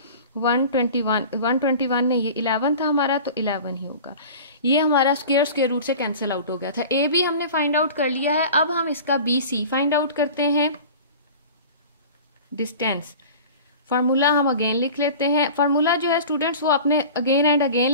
121 ने ये 11 था हमारा, तो 11 ही होगा। ये हमारा स्क्वायर रूट से कैंसिल आउट हो गया था। ए बी हमने फाइंड आउट कर लिया है। अब हम इसका बी सी फाइंड आउट करते हैं। डिस्टेंस फार्मूला हम अगेन लिख लेते हैं। फार्मूला जो है स्टूडेंट्स वो आपने अगेन एंड अगेन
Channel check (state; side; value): inverted; both; correlation -0.39